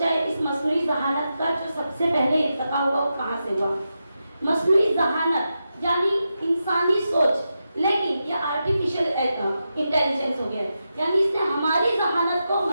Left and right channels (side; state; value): both; inverted; correlation -0.88